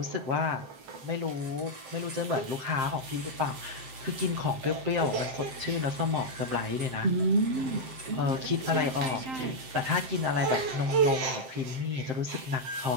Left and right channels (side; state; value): left; late; 7.7 ms